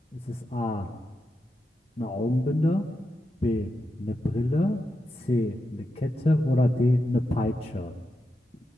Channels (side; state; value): both; normal; correlation 0.87